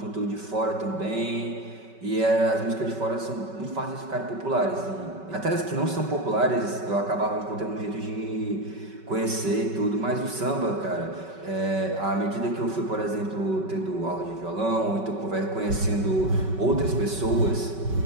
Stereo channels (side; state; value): left; late; 5.3 ms